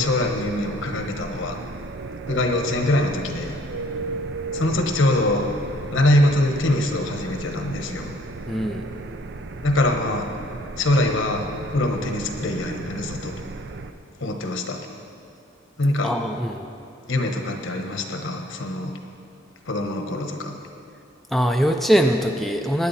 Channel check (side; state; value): both; normal; correlation 0.63